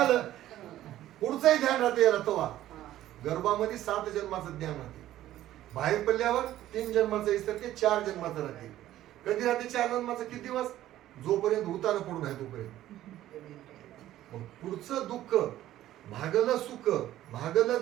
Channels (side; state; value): left; quieter; 13.6 dB